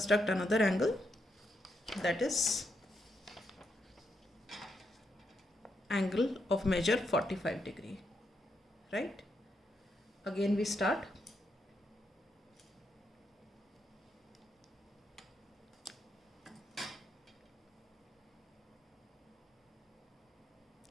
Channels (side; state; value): both; normal; correlation 0.81